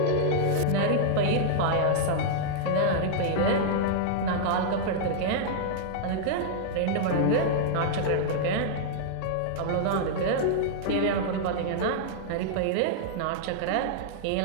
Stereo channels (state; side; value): different; both; correlation -0.01